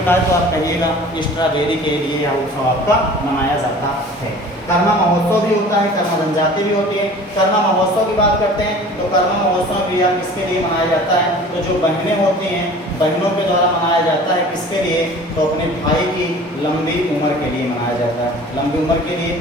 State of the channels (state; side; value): normal; both; correlation 0.44